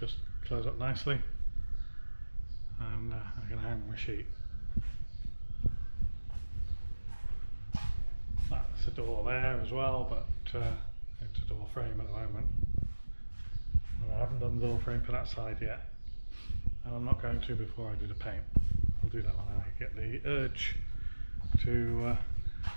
close up nicely, and I can hang my sheet. That's a door there as well, but it's a door frame at the moment. And I haven't done the door frame for that side yet, and I'm not going to before I do the paint. I'll do that when I get the urge to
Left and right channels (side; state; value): both; inverted; correlation -1.00